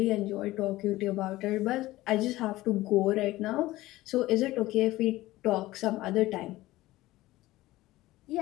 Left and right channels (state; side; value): quieter; right; 17.4 dB